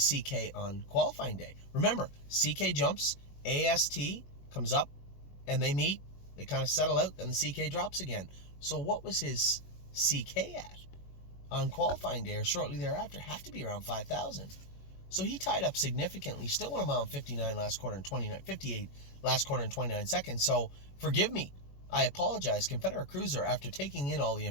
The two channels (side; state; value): right; late; 21 ms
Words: CK on qualifying day? Remember, CK jumps, AST comes up, and they meet. They kind of settle out, then the CK drops again. So what was his CK at on qualifying day or shortly thereafter? Have to be around 5,000. So he tied up significantly. Still went a mile 59 last quarter and 58 last quarter and 29 seconds. So forgive me. I apologize. Confederate Cruiser, after taking in all the